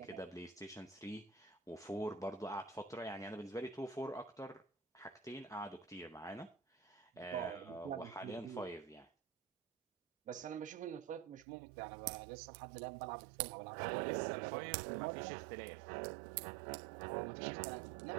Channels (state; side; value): drops out; left; at 11.5 s